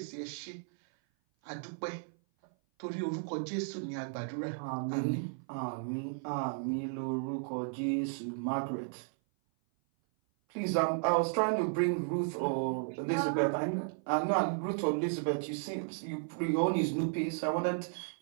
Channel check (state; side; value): silent; left; 55 dB below the other